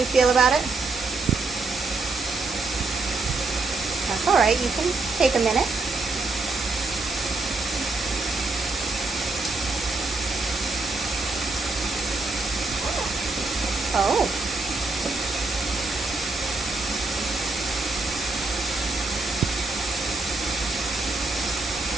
feel about it? That's all right. You can take a minute. Oh.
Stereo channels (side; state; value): left; quieter; 3.5 dB